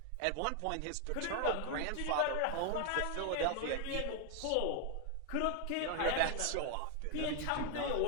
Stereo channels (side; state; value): both; different; correlation 0.01